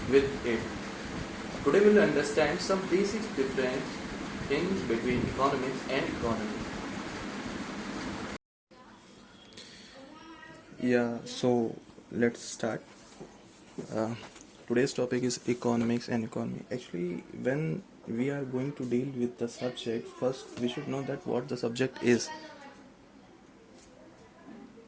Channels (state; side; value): identical; both; correlation 1.00